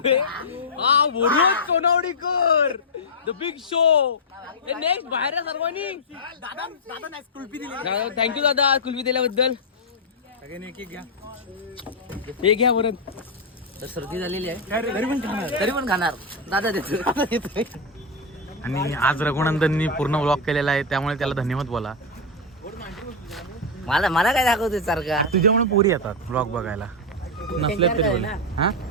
हा वरुण सोनावडीकर द बिग शो. नेक्स्ट बाहेर आहे सर्वांनी. थँक्यू दादा कुल्फी दिल्याबद्दल. हे घ्या वरून. तर सर्दी झालेली आहे तरी पण खाणार. दादा देतो. आणि आज रघुनंदननी पूर्ण व्लॉग केलेला आहे त्यामुळे त्याला धन्यवाद बोला. मला काय दाखवते सारखा. तुझ्यामुळे पोरी येतात व्लॉग बघायला नसले तरी बोल. हा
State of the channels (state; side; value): normal; both; correlation -0.01